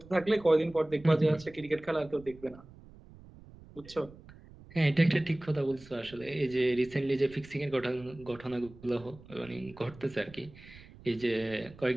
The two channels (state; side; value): noise; right; rumble, 20 dB below the sound